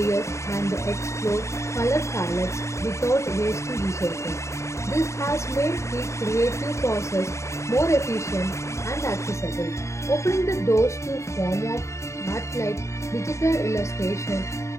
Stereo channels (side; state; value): right; late; 0.14 ms